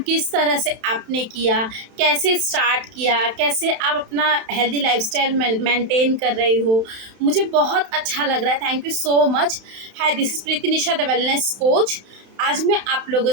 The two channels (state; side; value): late; left; 31 ms